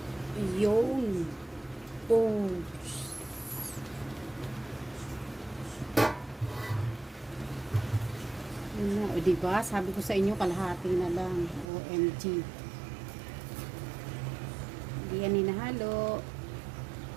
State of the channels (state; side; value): drops out; left; at 11.7 s